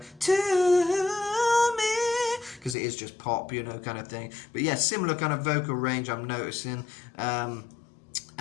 to me, because it is just pop, you know, kind of thing. But yeah, similar kind of vocal range I'm noticing. Yeah,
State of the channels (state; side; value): drops out; right; at 2.8 s